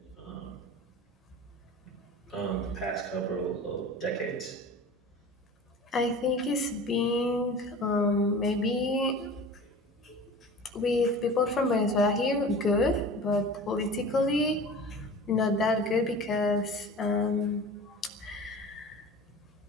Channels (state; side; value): normal; both; correlation 0.38